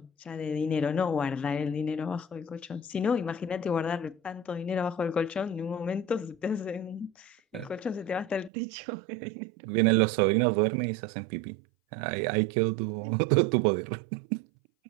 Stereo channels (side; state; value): left; drops out; at 8.5 s